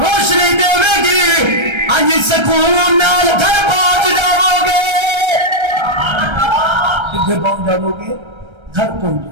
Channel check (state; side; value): late; left; 1.3 ms